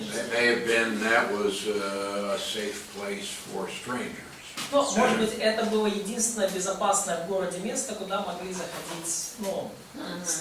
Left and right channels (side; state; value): both; identical; correlation 1.00